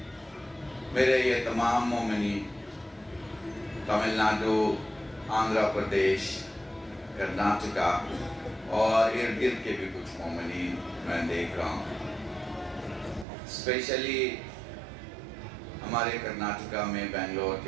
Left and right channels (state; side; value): drops out; left; at 13.2 s